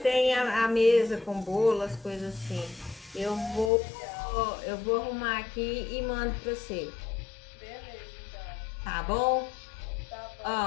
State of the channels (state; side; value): drops out; right; at 3.7 s